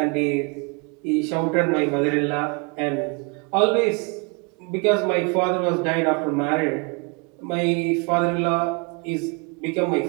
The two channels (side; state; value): left; quieter; 32.2 dB